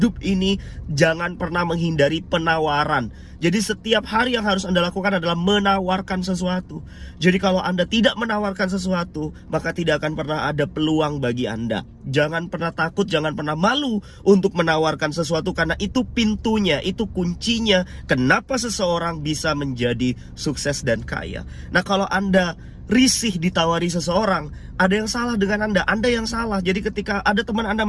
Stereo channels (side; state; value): both; identical; correlation 1.00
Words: ini jangan pernah menghindari penawaran. Jadi setiap hari yang harus Anda lakukan adalah menawarkan sesuatu. Jadi kalau Anda tidak menawarkan sesuatu, maka tidak akan pernah ada peluang bagi Anda. Jangan pernah takut, jangan pernah malu untuk menawarkan sesuatu, karena itu pintunya, itu kuncinya kenapa seseorang bisa menjadi sukses dan kaya. Nah, kalau Anda risih ditawari seseorang, ada yang salah dengan Anda yang salah. Jadi ketika ada teman Anda